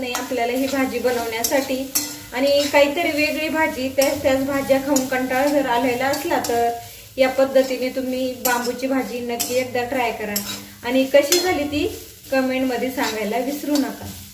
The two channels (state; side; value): identical; both; correlation 1.00